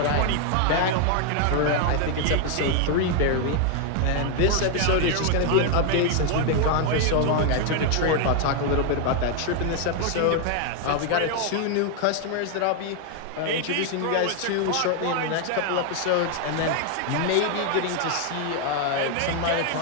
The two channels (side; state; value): both; different; correlation 0.00